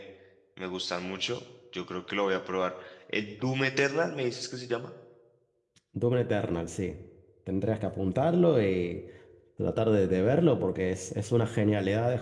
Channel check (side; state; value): both; identical; correlation 1.00